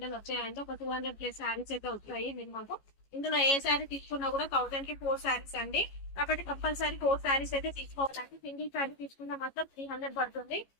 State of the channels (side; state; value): right; late; 15 ms